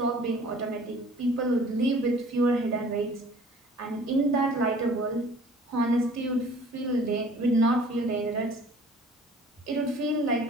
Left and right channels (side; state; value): both; normal; correlation 0.50